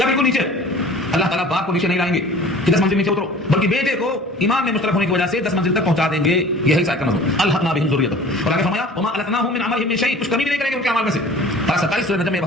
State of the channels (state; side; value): normal; both; correlation 0.45